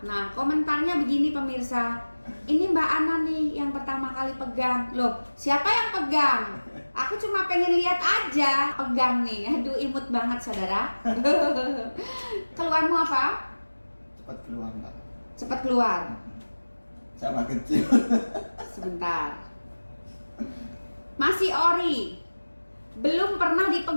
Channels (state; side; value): inverted; both; correlation -1.00